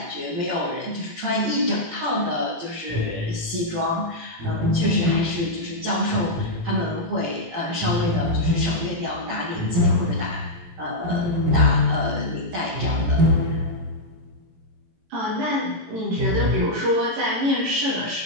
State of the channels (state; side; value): late; left; 17 ms